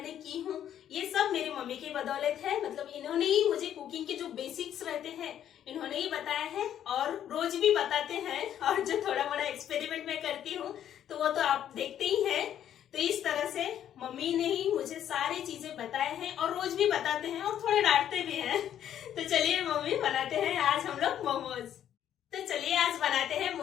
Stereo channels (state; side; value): quieter; right; 10.4 dB